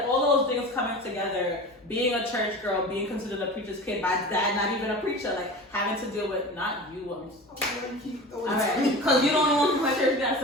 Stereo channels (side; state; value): both; normal; correlation 0.34